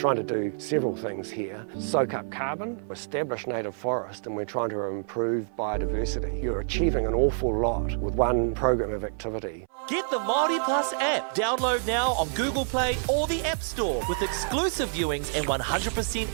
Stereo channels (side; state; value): left; silent; 60 dB below the other